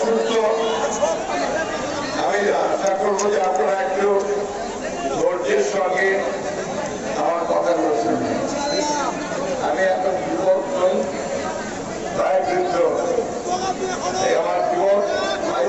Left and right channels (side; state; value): both; identical; correlation 1.00